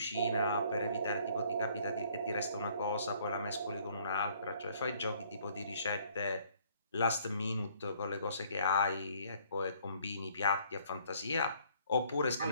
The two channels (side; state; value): both; inverted; correlation -0.61